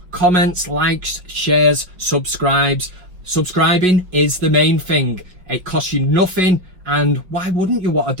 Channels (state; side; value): late; left; 5.1 ms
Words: comments, likes, shares, subscribes. Subscribing is the main thing. It costs you nothing, and why wouldn't you want